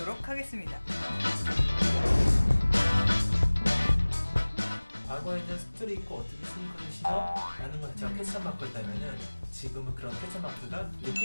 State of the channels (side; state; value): both; inverted; correlation -1.00